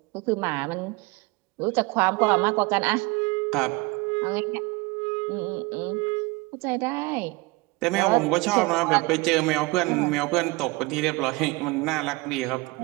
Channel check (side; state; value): left; quieter; 24.0 dB